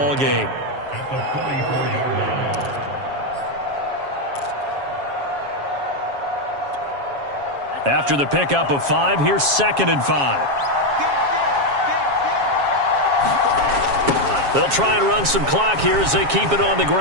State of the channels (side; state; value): left; late; 7.3 ms